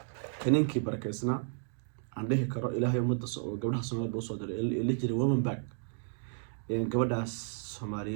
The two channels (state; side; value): silent; left; 56 dB below the other